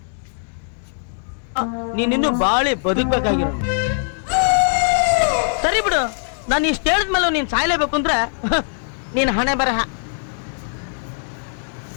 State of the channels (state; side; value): silent; right; 65 dB below the other